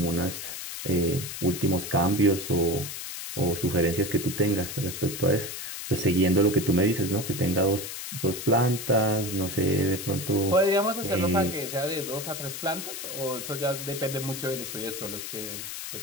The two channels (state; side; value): noise; left; hiss, 7 dB below the sound